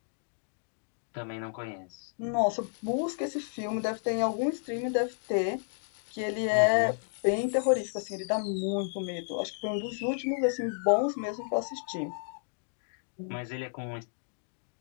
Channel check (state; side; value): silent; right; digital silence